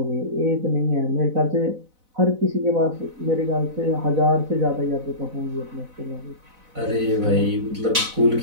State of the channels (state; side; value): late; left; 4.0 ms